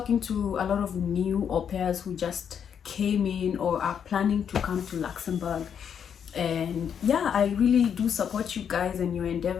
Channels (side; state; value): right; quieter; 7.9 dB